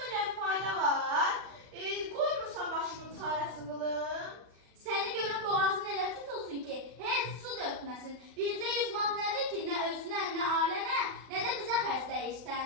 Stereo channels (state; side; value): late; left; 40 ms